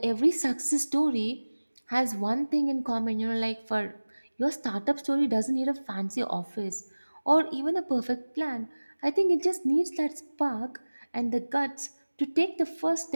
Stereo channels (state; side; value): inverted; both; correlation -1.00